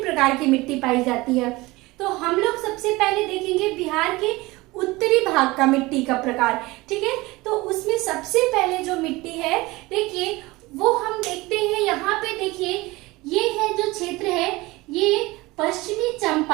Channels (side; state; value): left; quieter; 21.2 dB